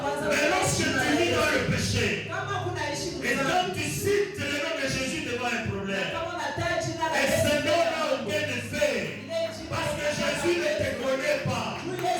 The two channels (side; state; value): both; identical; correlation 1.00